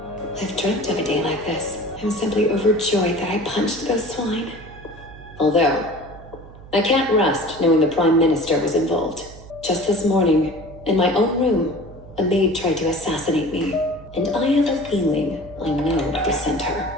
I've dreamt of a day like this. I'm simply overjoyed that I punched those swine. Although, I can't rest knowing the Prime Minister was involved. Just this morning, in my own room, a maid tried to assassinate me. And I have a feeling I know who sent her.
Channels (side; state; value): right; noise; hum, 18 dB below the sound